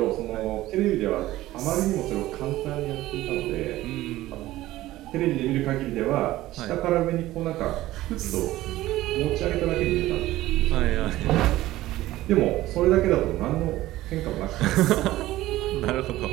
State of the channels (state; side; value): quieter; left; 16.1 dB